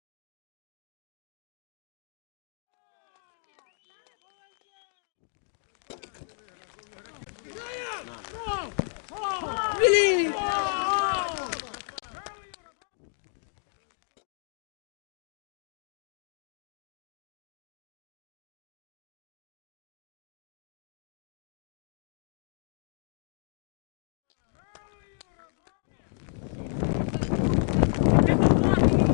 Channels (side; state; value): right; silent; 56 dB below the other